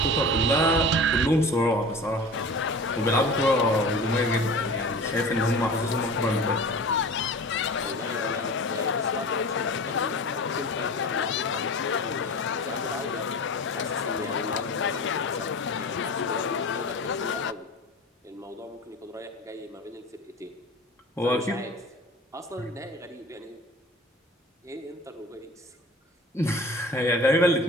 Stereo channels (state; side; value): normal; both; correlation 0.37